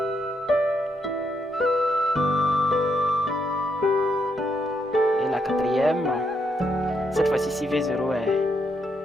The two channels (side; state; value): both; normal; correlation 0.78